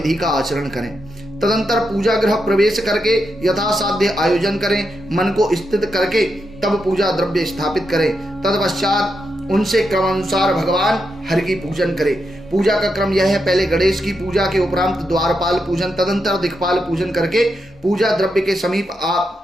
का आचरण करें। तदंतर पूजा गृह प्रवेश करके यथासाध्य आयोजन करें। मन को स्थित करके तब पूजा द्रव्य स्थापित करें। तत्पश्चात उनसे क्रमानुसार भगवान हरि की पूजन करें। पूजा का क्रम यह है, पहले गणेश की पूजा के उपरांत द्वारपाल पूजन, तदंतर दिक्पाल पूजन करके पूजा द्रव्य के समीप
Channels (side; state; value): both; normal; correlation 0.84